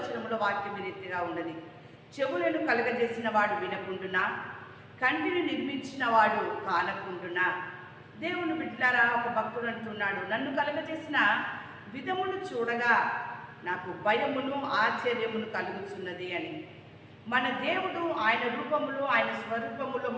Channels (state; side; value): identical; both; correlation 1.00